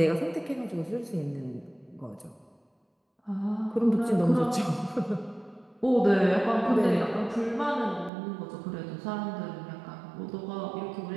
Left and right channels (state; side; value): drops out; left; at 8.1 s